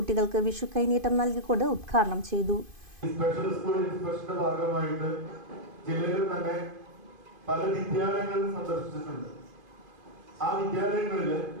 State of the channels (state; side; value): late; left; 2.5 ms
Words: വിഷു കൈനീട്ടം നൽകിക്കൊണ്ട് ഉദ്ഘാടനം ചെയ്തു. സ്പെഷ്യൽ സ്കൂൾ ഇൻസ്പെക്ഷന്റെ ഭാഗമായിട്ട് ജില്ലയിൽ തന്നെ പല വിദ്യാലയങ്ങളും സന്ദർശിച്ചിട്ടുണ്ട്. ആ വിദ്യാലയങ്ങളിൽ